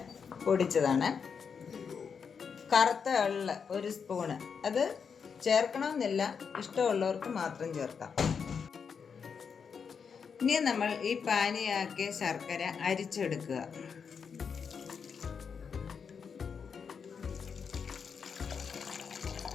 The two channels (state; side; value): quieter; right; 6.3 dB